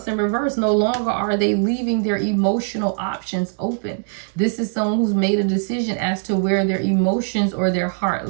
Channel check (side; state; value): left; silent; digital silence